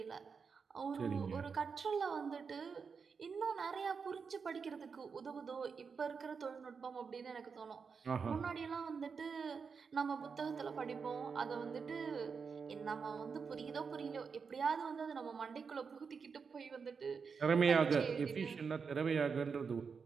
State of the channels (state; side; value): quieter; left; 5.6 dB